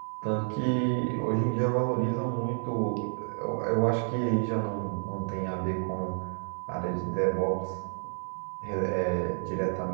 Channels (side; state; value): left; silent; 58 dB below the other